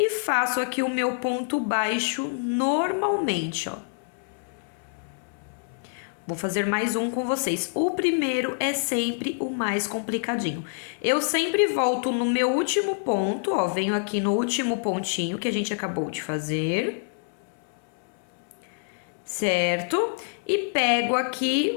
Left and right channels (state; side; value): silent; right; 61 dB below the other